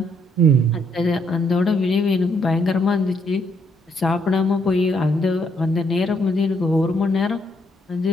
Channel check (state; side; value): normal; both; correlation 0.72